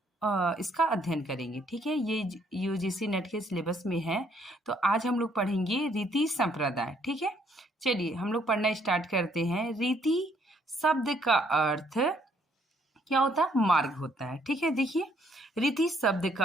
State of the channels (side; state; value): both; normal; correlation 0.67